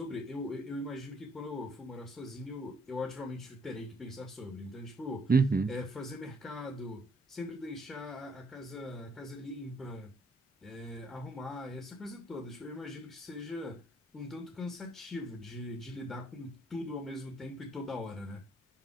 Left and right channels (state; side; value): normal; both; correlation 0.68